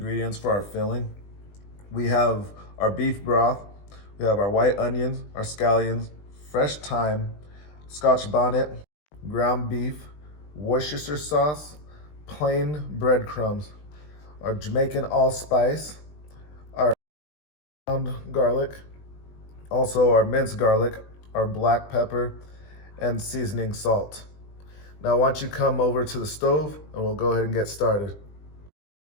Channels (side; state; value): right; late; 20 ms